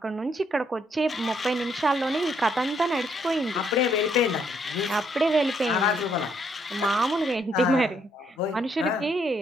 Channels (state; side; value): normal; both; correlation 0.72